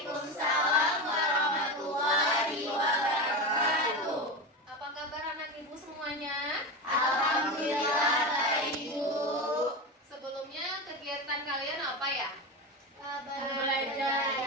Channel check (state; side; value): normal; both; correlation 0.21